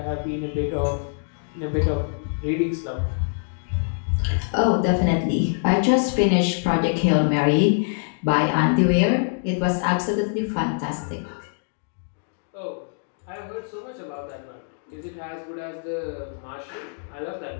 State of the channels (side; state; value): right; silent; digital silence